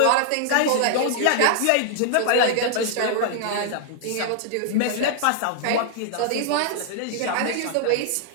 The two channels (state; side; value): different; both; correlation -0.01